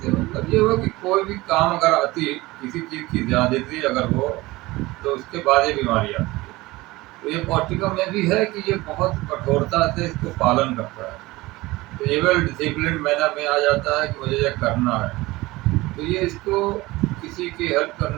मतलब ये हुआ कि कोई भी काम अगर आती, किसी चीज़ की ज़्यादती अगर हो, तो उसके बाद ये बीमारी आती है। तो ये पौष्टिकम में भी है कि ये बहुत कठोरता से इसको पालन करता है, तो ये वेल डिसिप्लिन मैनर में आ जाता है कि मुझे ये करना है। तो ये इसको किसी की हेल्प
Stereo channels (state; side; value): quieter; left; 20.2 dB